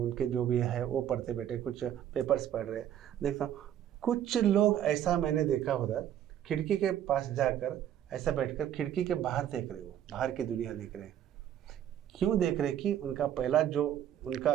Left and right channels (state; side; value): quieter; left; 10.6 dB